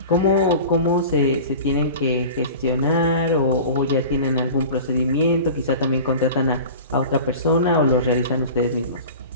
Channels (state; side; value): inverted; both; correlation -0.37